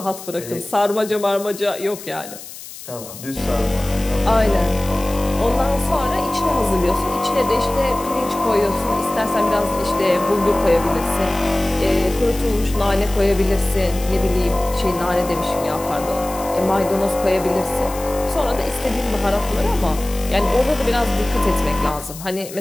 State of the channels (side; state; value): left; noise; hiss, 14 dB below the sound